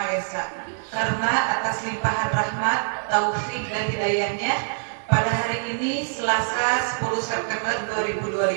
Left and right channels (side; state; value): left; silent; 56 dB below the other